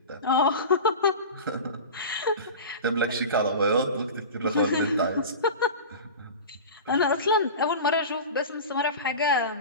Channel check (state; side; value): inverted; both; correlation -0.31